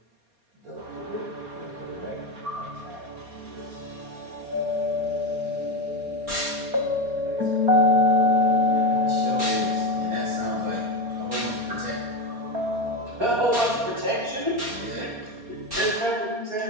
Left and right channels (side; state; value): left; late; 4.2 ms